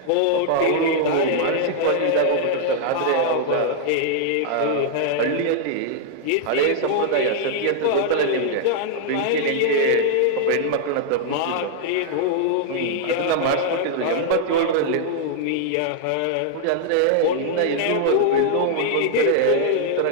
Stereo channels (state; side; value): different; both; correlation -0.01